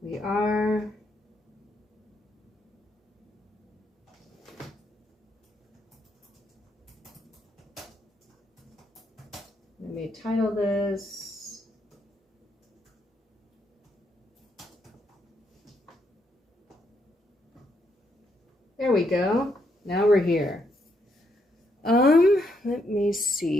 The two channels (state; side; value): normal; both; correlation 0.76